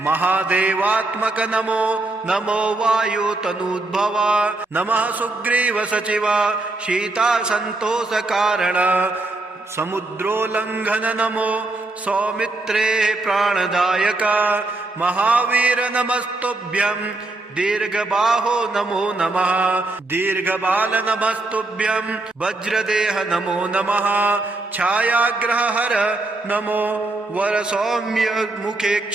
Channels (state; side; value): quieter; left; 3.0 dB